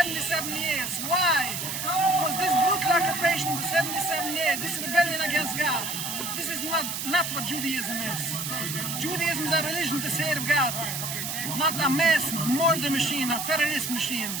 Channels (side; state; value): right; noise; hiss, 4 dB below the sound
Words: years. Why? Because this brutal occupation for 77 years, this rebellion against God, this is not what Judaism is. Judaism is a religion to serve God, not a mass murder machine, a terrorist machine.